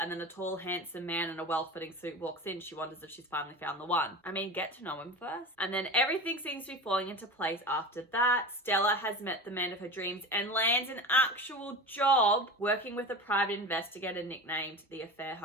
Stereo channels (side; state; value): both; normal; correlation 0.30